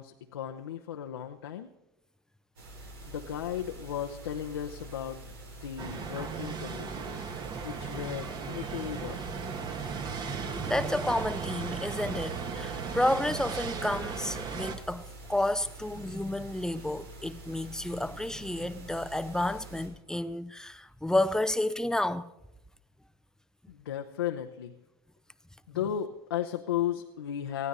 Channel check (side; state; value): both; normal; correlation 0.59